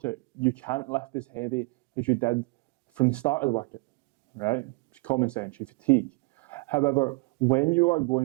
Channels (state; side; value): quieter; left; 27.8 dB